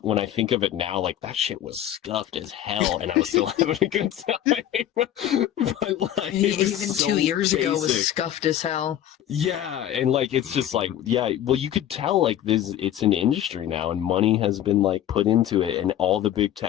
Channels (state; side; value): quieter; right; 11.5 dB